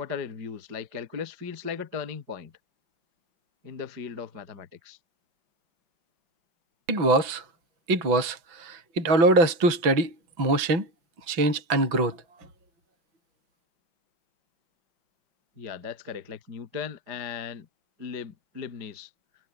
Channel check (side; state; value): left; late; 6.0 ms